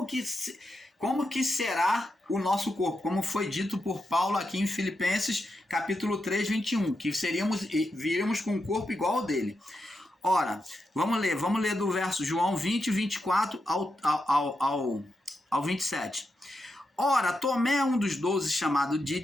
que será o nosso corpo, como foi dito por Paulo aqui em Filipenses, capítulo 3, 21, que viríamos com um corpo igual ao dele. Ora, vamos ler do verso João 20, 24 ao 27. Ora, Tomé, um dos 12, chamado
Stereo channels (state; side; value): normal; both; correlation 0.86